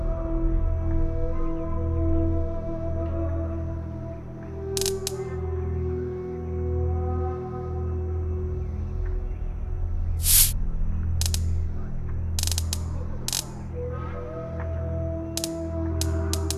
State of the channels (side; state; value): both; identical; correlation 1.00